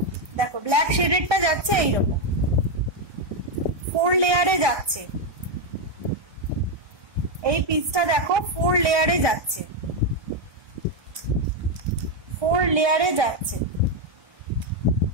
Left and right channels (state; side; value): late; left; 1.2 ms